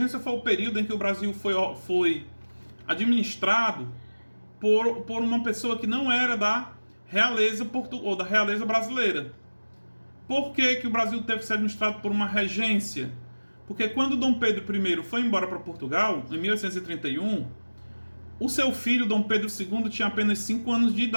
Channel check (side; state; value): both; inverted; correlation -1.00